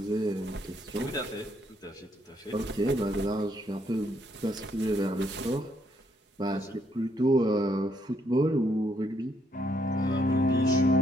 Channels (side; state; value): both; normal; correlation 0.72